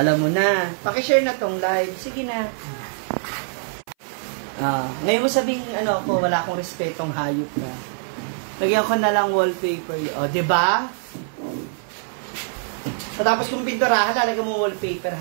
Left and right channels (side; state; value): left; silent; 57 dB below the other